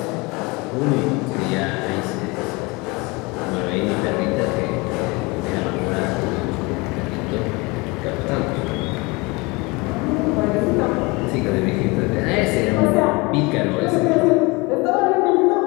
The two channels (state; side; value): quieter; right; 25.9 dB